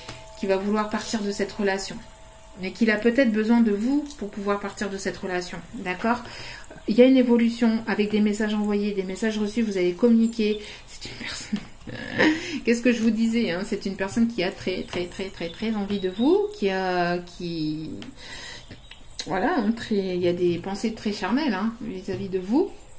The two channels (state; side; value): identical; both; correlation 1.00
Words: Qui va vouloir partir de cette relation. Mais qu'il a peut-être besoin de vous pour pouvoir partir de cette relation. D'accord? Il y a une évolution avec des messages envoyés, des messages reçus, vous allez communiquer. C'est une personne... Qu'est-ce que je vous disais, hein? C'est une personne qui a très envie de vous, voilà, il y a des pensées très charnelles hein, vis-à-vis de vous.